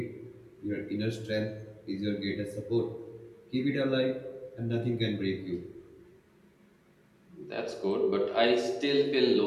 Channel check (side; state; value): both; identical; correlation 1.00